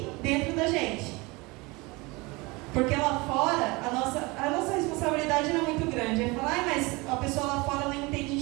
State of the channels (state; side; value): quieter; left; 24.7 dB